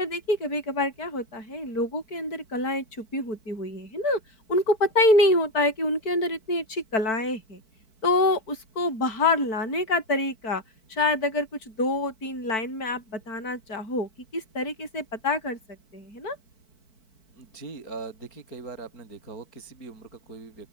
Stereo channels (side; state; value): right; late; 4.6 ms